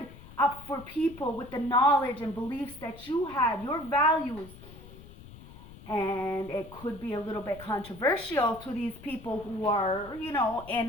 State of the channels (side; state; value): left; noise; rumble, 18 dB below the sound